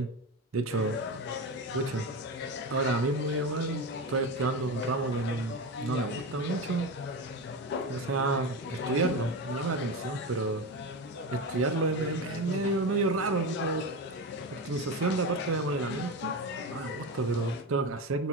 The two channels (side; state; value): both; normal; correlation 0.21